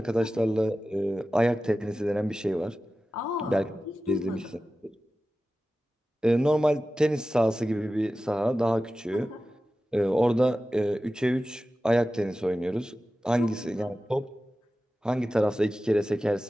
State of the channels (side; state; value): both; normal; correlation 0.95